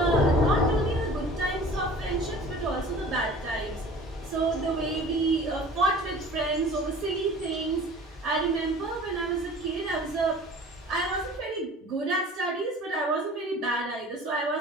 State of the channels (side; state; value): both; normal; correlation 0.44